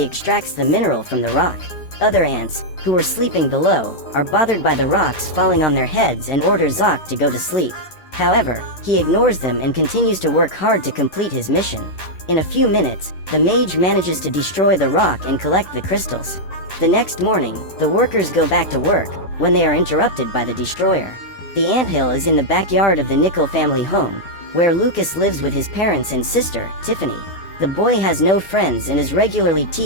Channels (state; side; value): late; right; 11 ms